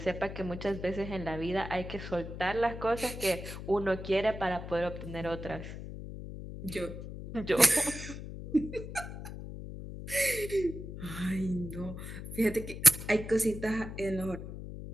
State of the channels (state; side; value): noise; left; hum, 9 dB below the sound